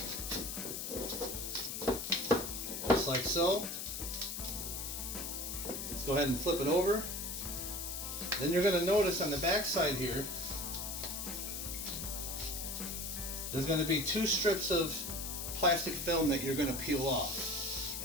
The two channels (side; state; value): left; noise; hiss, 5 dB below the sound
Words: Just like so. Let's go ahead and flip it over. Then you're going to notice on the back side here, there's going to be 2 strips of plastic film that you're going to peel off.